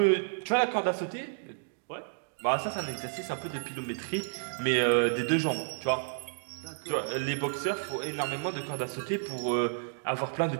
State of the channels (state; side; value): silent; left; digital silence